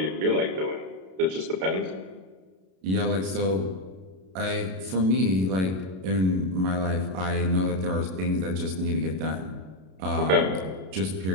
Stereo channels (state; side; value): late; left; 32 ms